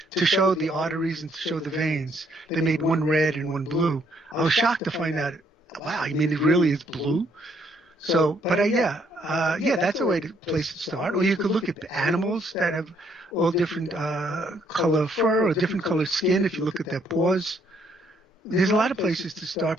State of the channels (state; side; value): normal; both; correlation 0.69